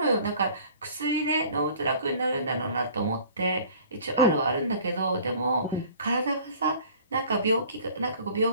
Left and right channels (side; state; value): both; inverted; correlation -0.48